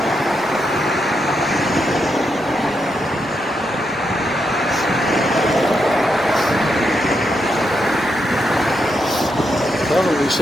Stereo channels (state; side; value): normal; both; correlation 0.82